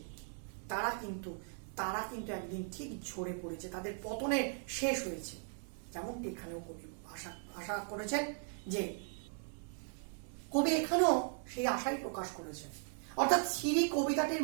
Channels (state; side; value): silent; left; 52 dB below the other